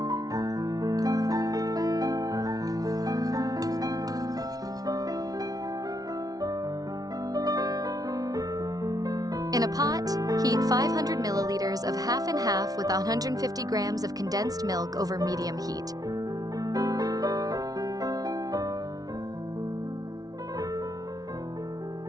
In a pot, heat 500 milliliters of half and half with 150 grams of condensed milk over medium heat.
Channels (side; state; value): left; late; 0.18 ms